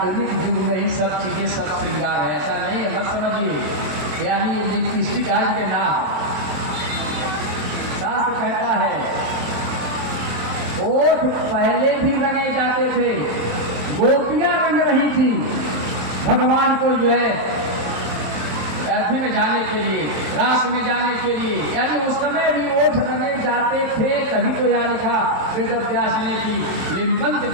युग में ही सब चीजें सब श्रृंगार है। ऐसा नहीं है, मत समझिए। यानी ये लिपस्टिक आज के नाम, शास्त्र कहता है ओठ पहले भी रंगे जाते थे, गोपियां रंग रही थी भगवान को जो है अर्थी में जाने के लिए, रास में जाने के लिए, यानी उस समय भी ओठ रंगे जाते थे। तभी तो यहाँ लिखा वेद व्यास ने कि लिम्पन्ति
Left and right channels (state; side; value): late; left; 27 ms